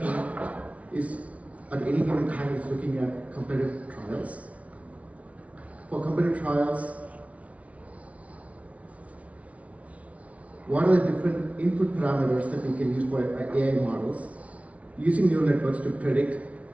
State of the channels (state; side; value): late; left; 0.066 ms